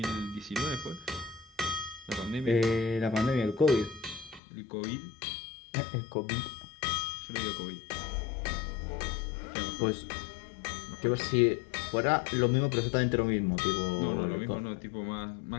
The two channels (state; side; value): drops out; right; at 4.4 s